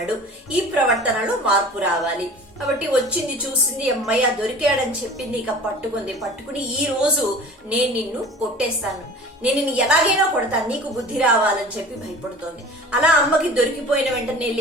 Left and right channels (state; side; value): normal; both; correlation 0.41